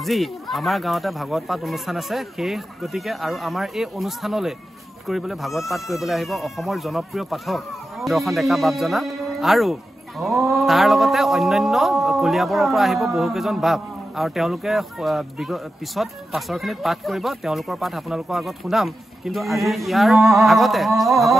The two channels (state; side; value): normal; both; correlation 0.91